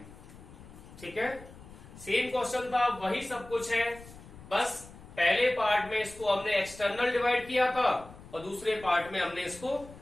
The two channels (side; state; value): left; noise; rumble, 18 dB below the sound